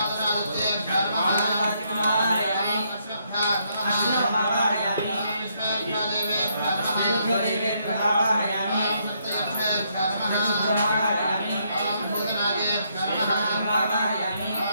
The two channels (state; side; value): inverted; both; correlation -0.74